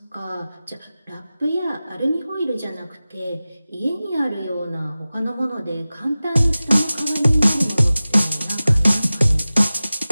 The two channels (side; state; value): both; inverted; correlation -0.97